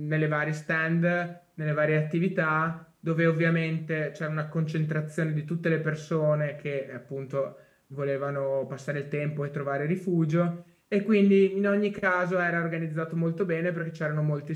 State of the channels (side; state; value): both; identical; correlation 1.00